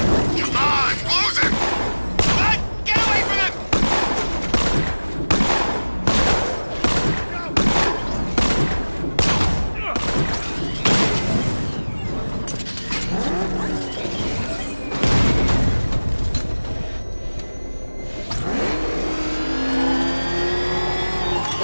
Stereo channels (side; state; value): both; inverted; correlation -1.00